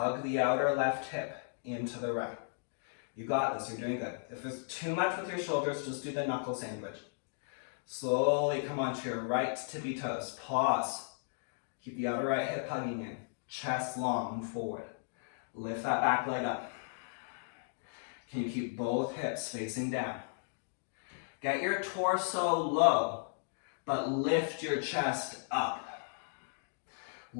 the outer left hip into the right. You got this. You're doing good. If there's too much with your shoulders, just do the knuckle sandwich. Slowly come onto your right tippy toes. Pause. Keep the outer right hip hugging in. Chest long, move forward. Lift that back leg up. Can you keep both hips facing down? Get your torso low, but lift your chest up.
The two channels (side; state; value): right; silent; digital silence